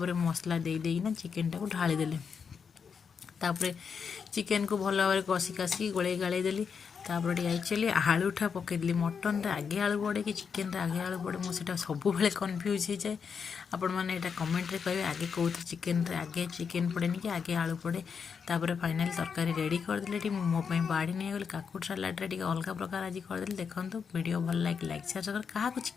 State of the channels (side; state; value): right; quieter; 6.3 dB